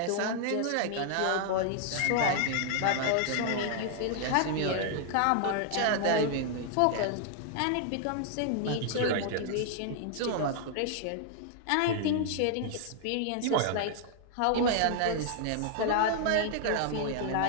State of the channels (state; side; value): different; both; correlation 0.00